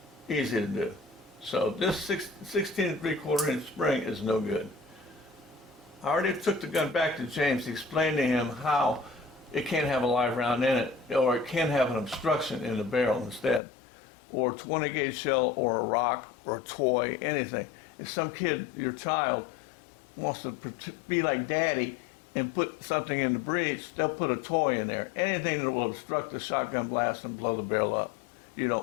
Easy to do. So this 16 3/4 inch spring is no good. I already took the gun back to James to explain to him how it can't have a live round in it, or it can have an obstruction in the barrel instead, or 20 gauge shell, or a rock, or a toy, anything. If some kid, your child, wants to be like daddy and put something in the breech, they'll put a toy in there. Anything that will obstruct the shotgun blast and blow the barrel up, you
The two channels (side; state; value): right; drops out; at 13.6 s